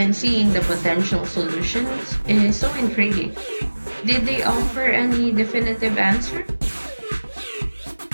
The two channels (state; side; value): inverted; both; correlation -1.00